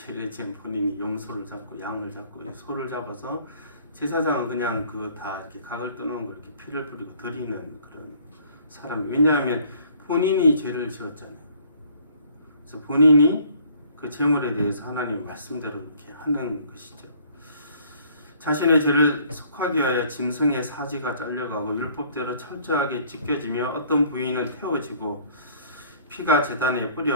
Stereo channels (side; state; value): both; inverted; correlation -0.58